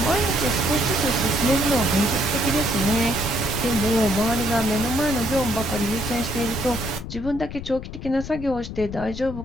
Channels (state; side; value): noise; left; rumble, 10 dB below the sound